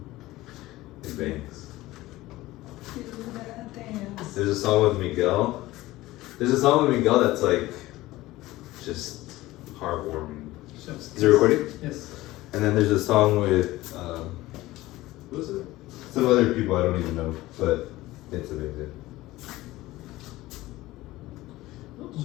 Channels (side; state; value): right; quieter; 17.8 dB